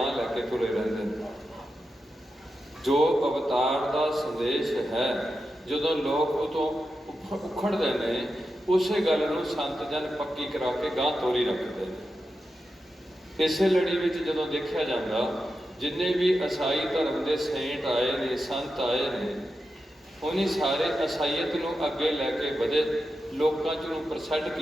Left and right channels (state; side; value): normal; both; correlation 0.89